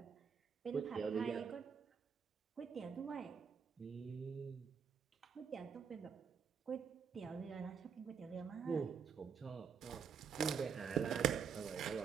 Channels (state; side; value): quieter; left; 6.7 dB